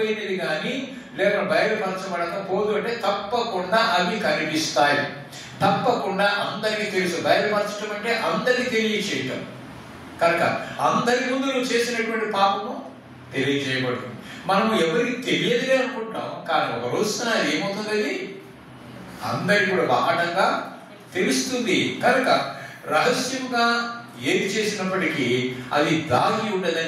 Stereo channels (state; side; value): identical; both; correlation 1.00